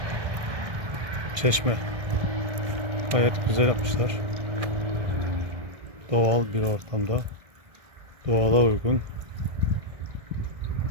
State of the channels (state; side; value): late; left; 1.7 ms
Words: çeşme. Gayet güzel yapmışlar. Doğal bir ortamda, doğala uygun